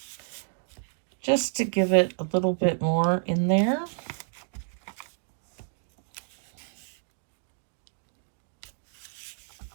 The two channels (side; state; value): left; silent; digital silence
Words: just to give it a little bit more in there.